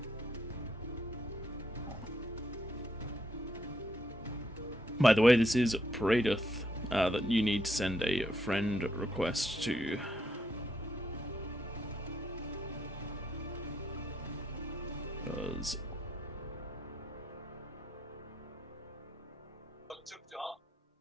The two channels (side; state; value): both; normal; correlation 0.76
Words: By the way, this is Pradith that you need to send a friend request to. Because